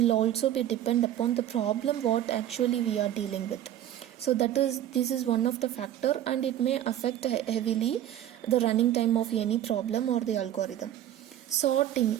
also be depend upon the problem what actually we are dealing with. So this is one of the factor, and it may affect heavily the running time of any problem or the algorithm. Sorting.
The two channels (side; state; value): left; quieter; 11.7 dB